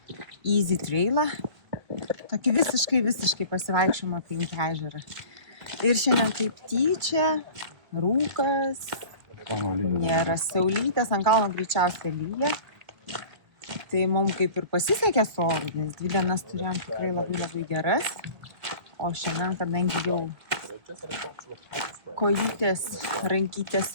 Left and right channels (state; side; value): late; left; 2.3 ms